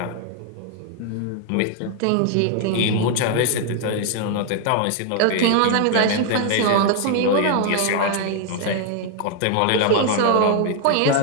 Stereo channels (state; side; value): different; both; correlation 0.00